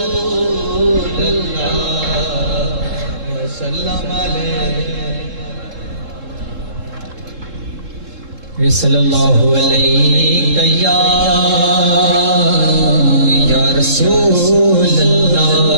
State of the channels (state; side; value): late; left; 3.7 ms